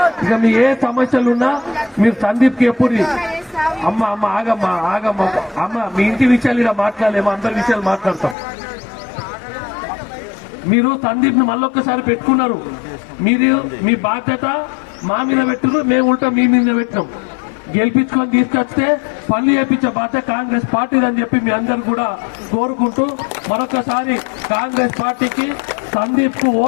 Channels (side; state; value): right; drops out; at 8.3 s